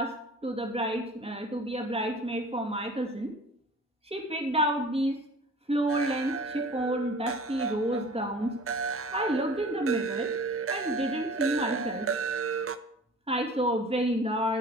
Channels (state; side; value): normal; both; correlation 0.43